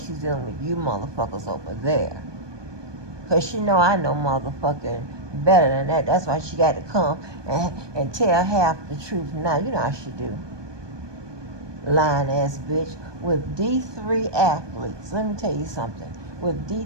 she's dealing with you motherfuckers over there. Because she know I know motherfucking better than that. That's why she got to come and tell half the truth now. You know how she do. Lying ass bitch. With D3 athletes, let me tell you something. With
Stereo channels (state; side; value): late; left; 1.2 ms